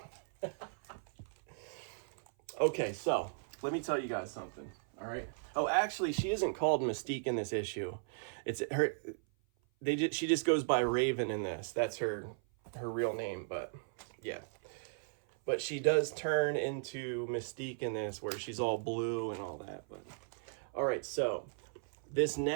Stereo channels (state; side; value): silent; left; 53 dB below the other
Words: Okay, so let me tell you guys something, all right? Oh, actually, she isn't called Mystique in this issue. It's her. She just goes by Raven in this. That's her real name, but yeah. But she does turn into Mystique in this, where she's all blue and all that. But all right, so these